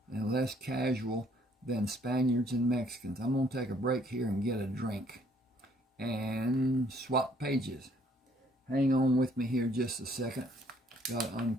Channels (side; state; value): both; normal; correlation 0.64